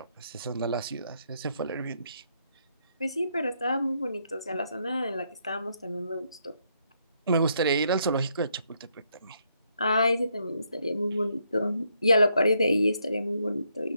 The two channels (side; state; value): both; inverted; correlation -0.75